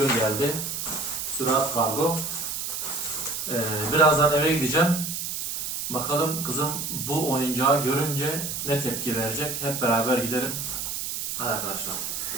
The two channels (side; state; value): right; noise; hiss, 4 dB below the sound